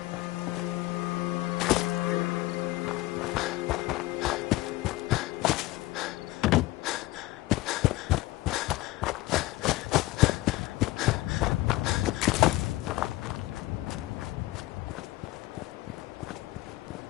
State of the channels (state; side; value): quieter; right; 18.5 dB